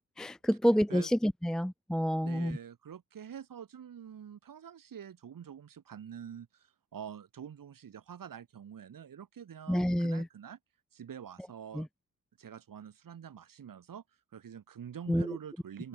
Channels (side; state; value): both; normal; correlation 0.93